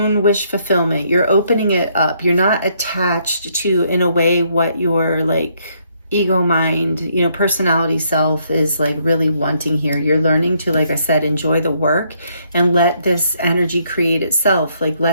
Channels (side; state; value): both; inverted; correlation -0.71